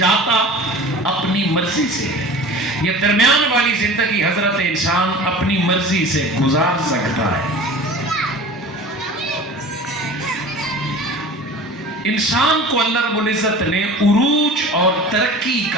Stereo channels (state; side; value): normal; both; correlation 0.39